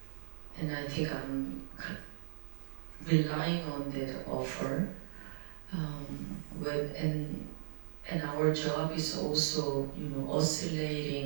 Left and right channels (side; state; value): left; silent; 53 dB below the other